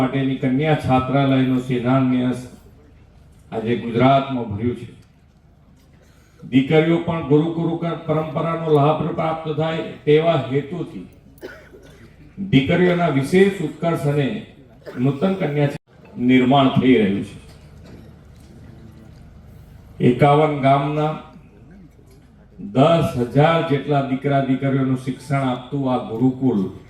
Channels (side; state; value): both; identical; correlation 1.00